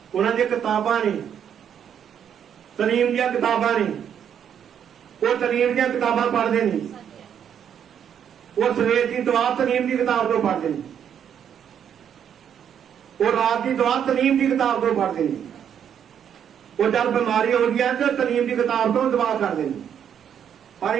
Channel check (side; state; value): left; quieter; 8.7 dB